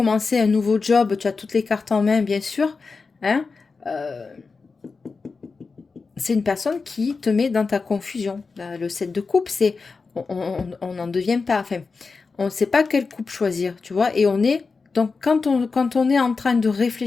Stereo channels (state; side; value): quieter; right; 4.5 dB